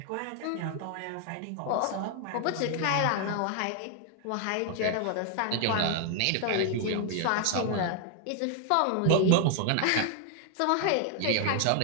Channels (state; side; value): different; both; correlation 0.00